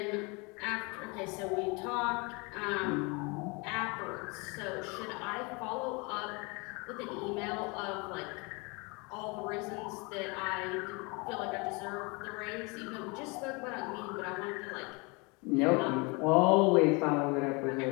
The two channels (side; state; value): right; quieter; 28.8 dB